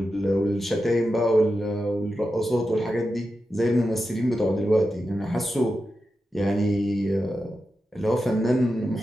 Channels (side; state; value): both; normal; correlation 0.90